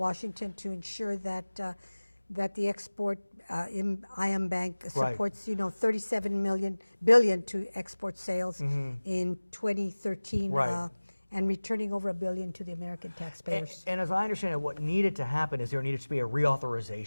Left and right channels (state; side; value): inverted; both; correlation -1.00